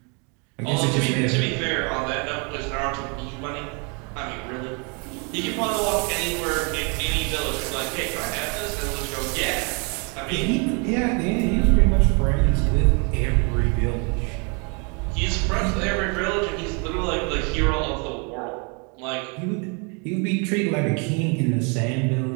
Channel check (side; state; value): left; quieter; 34.3 dB